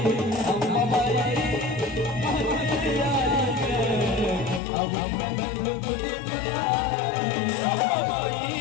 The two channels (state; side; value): drops out; right; at 4.6 s